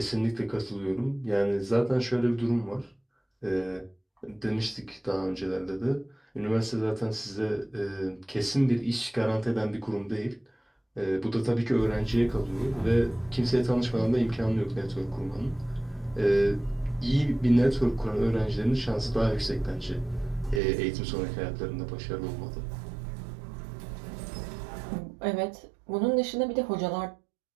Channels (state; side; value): drops out; left; at 20.6 s